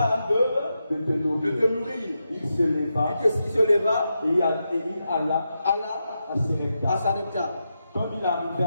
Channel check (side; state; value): both; inverted; correlation -0.87